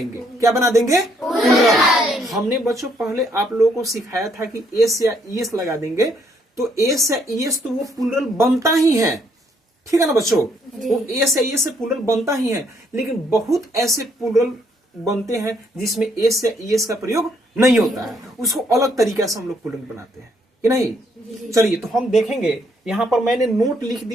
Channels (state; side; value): normal; both; correlation 0.70